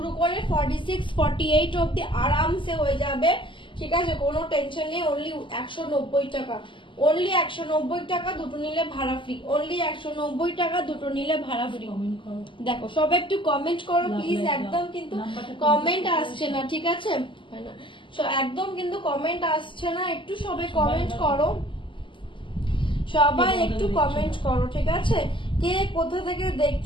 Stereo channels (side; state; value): right; late; 0.24 ms